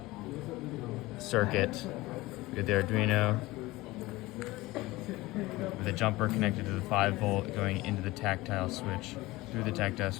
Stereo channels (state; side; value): quieter; right; 19.8 dB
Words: circuit. We have the Arduino with a jumper connected to the 5-volt going into the tactile switch, through the tactile